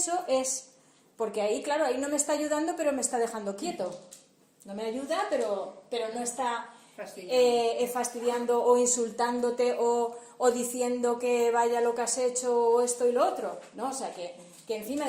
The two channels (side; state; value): both; identical; correlation 1.00